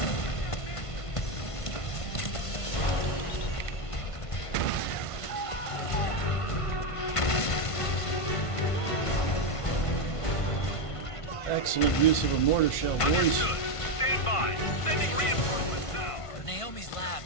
Excellent use of a mortar shell, boys. Stand by. Sending reinforcements now. Naomi's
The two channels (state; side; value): late; right; 1.5 ms